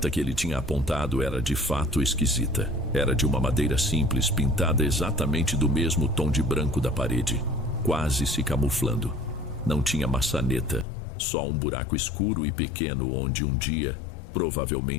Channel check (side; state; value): right; drops out; at 10.9 s